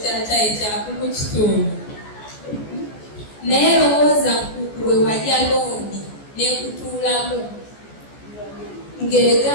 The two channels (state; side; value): late; right; 14 ms